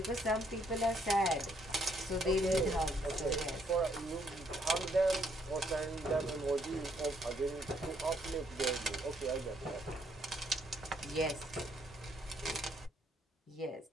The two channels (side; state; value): both; normal; correlation 0.70